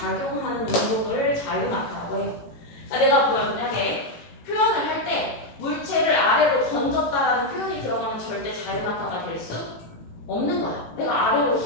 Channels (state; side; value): late; right; 18 ms